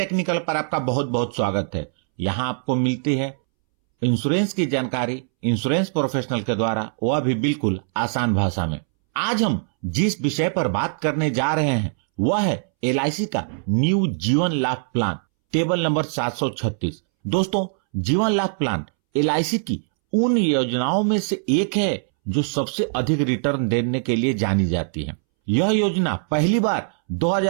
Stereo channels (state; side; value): silent; left; 64 dB below the other